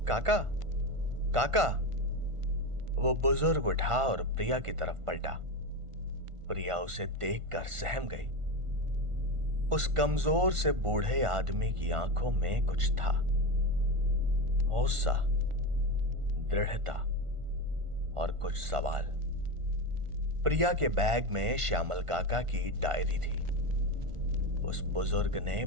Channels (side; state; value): left; late; 1.4 ms